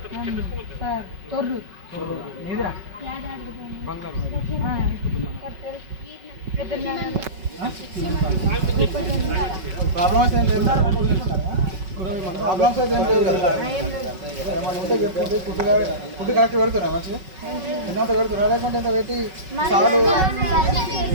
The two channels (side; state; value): left; late; 5.3 ms